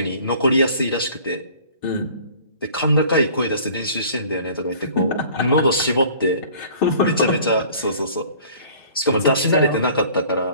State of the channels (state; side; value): inverted; both; correlation -0.48